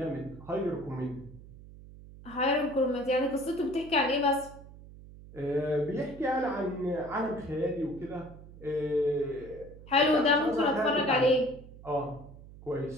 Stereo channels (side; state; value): right; noise; hum, 18 dB below the sound